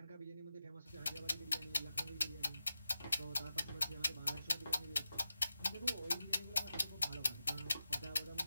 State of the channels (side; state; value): both; inverted; correlation -0.91